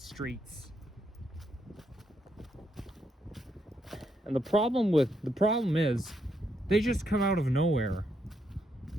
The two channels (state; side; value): normal; both; correlation 0.77